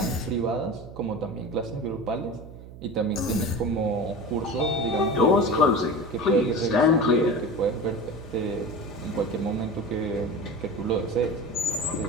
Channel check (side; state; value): right; noise; hum, 15 dB below the sound